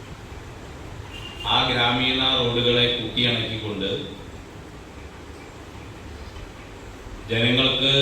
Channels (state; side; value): identical; both; correlation 1.00